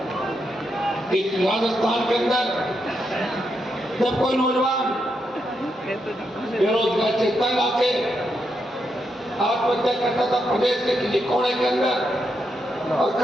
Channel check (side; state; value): both; normal; correlation 0.82